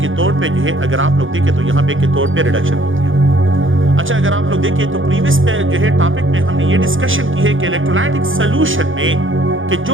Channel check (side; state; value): left; late; 0.58 ms